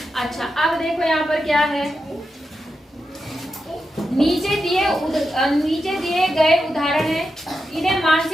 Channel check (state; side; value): normal; both; correlation 0.88